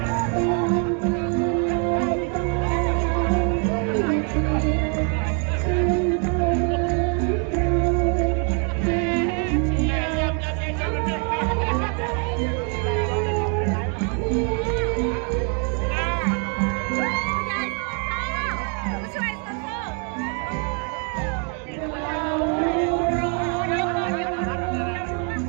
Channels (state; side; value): quieter; left; 39.8 dB